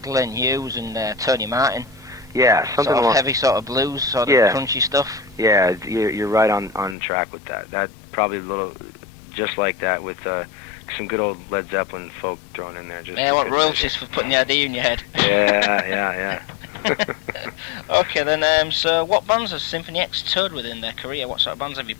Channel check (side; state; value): right; drops out; at 7.0 s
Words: Glenn Hughes and Tony Martin. Yeah, something sort of heavy, sort of blues, sort of crunchy stuff. Yeah, you're right on track with that. That probably a little just like that with some good old Led Zeppelin folk thrown in there. Just yeah, what royalties for putting the idea in your head. Yeah. Okay, then. So, what bands has Symphony X toured with in their career? What sort of bands have you